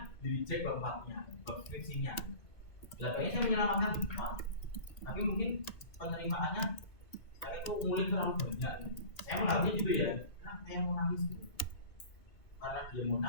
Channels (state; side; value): late; right; 2.3 ms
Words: di reject bab 4-nya, bab skripsinya. Belakangnya saya menyelamatkan Pak. Tapi mungkin penerimaannya saya itu ngulik terlalu banyak. Saya menganggapnya gitu ya, karena saya mau nangis gitu. Karena dia mau